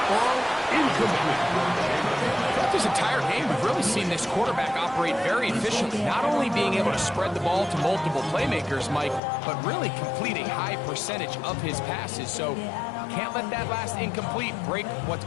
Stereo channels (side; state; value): right; drops out; at 9.2 s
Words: ball incomplete. This entire game, we've really seen this quarterback operate very efficiently, not only being able to spread the ball to multiple playmakers, Mike, but really completing high percentage of his passes. So can't let that last incomplete break what's